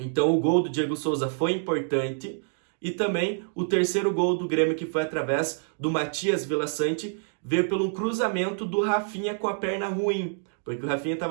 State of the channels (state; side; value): silent; left; digital silence